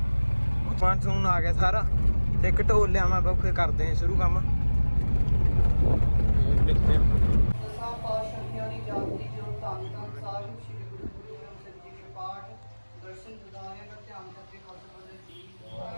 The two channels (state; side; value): inverted; both; correlation -1.00